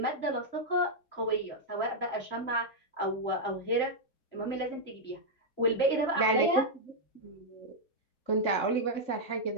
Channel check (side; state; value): right; late; 3.6 ms